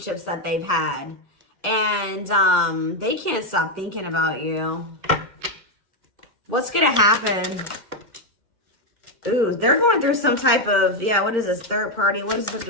that they've had. And they can't stop thinking about you. What's going to happen? Ooh, they're going through some type of, yeah, what is this? Third party? What does this have to do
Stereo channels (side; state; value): left; late; 2.1 ms